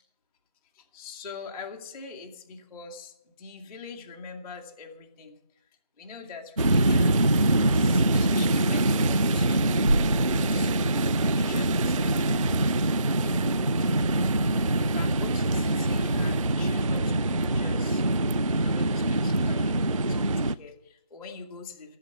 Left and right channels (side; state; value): both; inverted; correlation -0.72